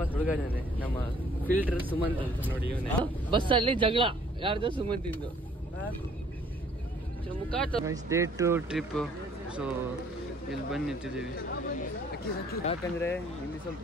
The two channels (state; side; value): normal; both; correlation 0.59